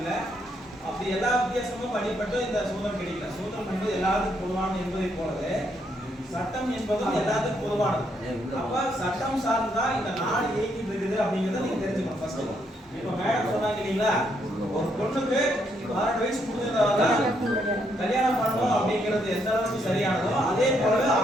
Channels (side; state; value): both; normal; correlation 0.75